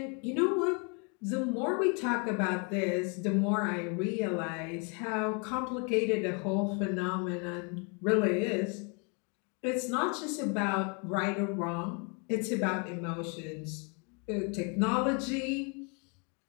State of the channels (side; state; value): right; quieter; 35.3 dB